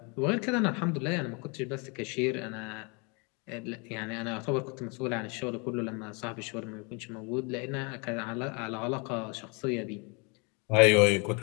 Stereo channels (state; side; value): quieter; right; 32.1 dB